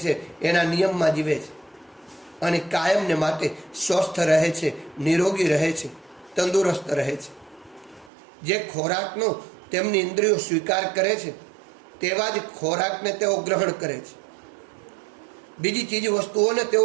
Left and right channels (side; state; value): left; drops out; at 8.1 s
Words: એના નિયમમાં જીવે છે અને કાયમને માટે સ્વસ્થ રહે છે, નિરોગી રહે છે, તંદુરસ્ત રહે છે. જે ખોરાકનો તેમની ઇન્દ્રિયો સ્વીકાર કરે છે તેવા જ ખોરાકને તેઓ ગ્રહણ કરે છે. બીજી ચીજ વસ્તુઓને